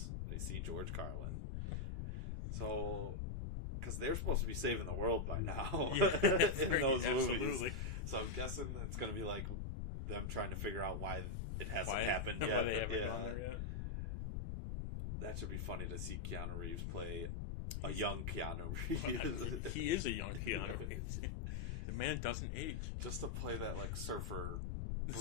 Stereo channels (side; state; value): left; noise; rumble, 2 dB below the sound